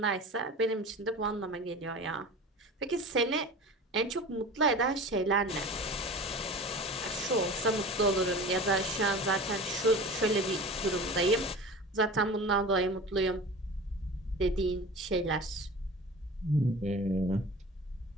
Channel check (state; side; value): normal; both; correlation 0.37